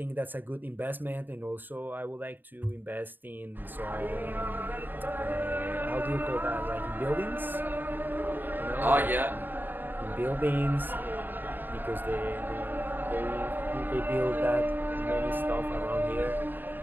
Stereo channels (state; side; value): late; left; 0.092 ms